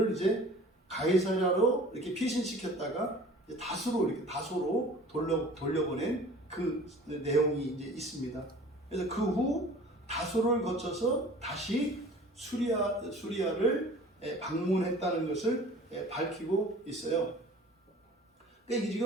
이제 가이사랴로 이렇게 피신시켰다가 다소로 돌려보낸 그 내용이 이제 있습니다. 그래서 그 후 다소를 거쳐서 다시 수리아를 방문했다는 것을 밝히고 있어요. 그러니까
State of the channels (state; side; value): normal; both; correlation 0.46